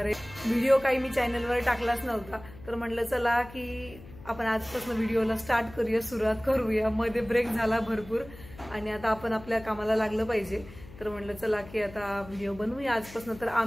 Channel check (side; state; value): left; noise; hum, 18 dB below the sound